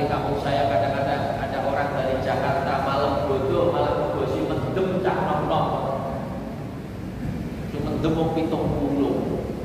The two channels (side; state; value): both; identical; correlation 1.00